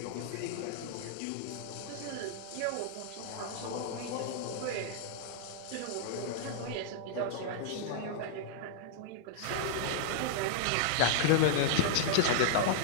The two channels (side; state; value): both; different; correlation -0.01